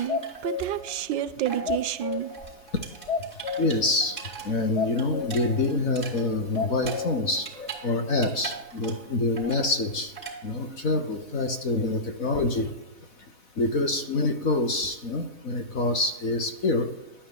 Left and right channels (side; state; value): right; late; 4.0 ms